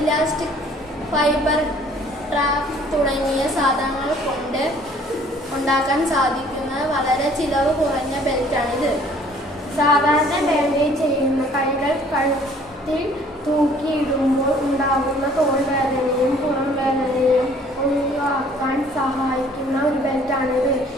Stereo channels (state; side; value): normal; both; correlation 0.56